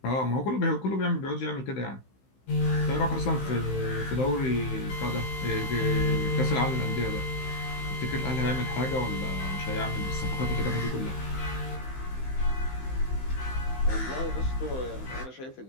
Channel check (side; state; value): right; late; 15 ms